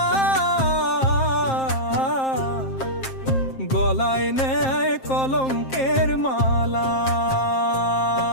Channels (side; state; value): right; late; 7.6 ms